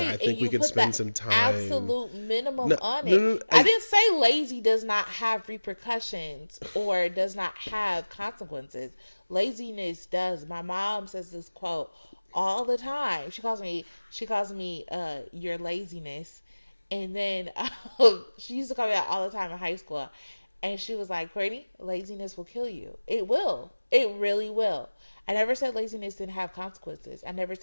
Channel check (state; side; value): inverted; both; correlation -1.00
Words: and you put that absolute minimum on it. No, I didn't say lazy does not have repercussions or does not have consequences. Laziness does. My mom says this quote all the time. She calls me your laziness. And then she used to call me that all the time in high school. And she was like, Courtney, laziness will kill you. It will. It really will. I never said laziness didn't have consequences. I never